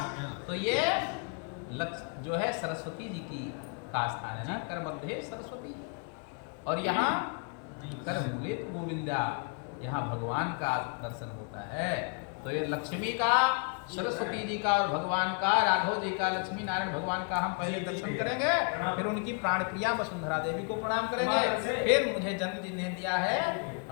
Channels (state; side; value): quieter; right; 37.1 dB